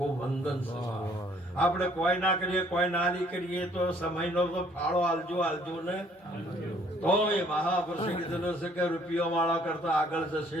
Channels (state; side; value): normal; both; correlation 0.61